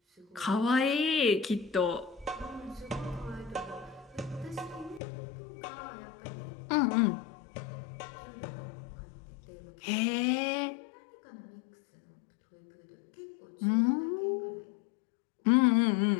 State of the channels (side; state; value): right; drops out; at 5.0 s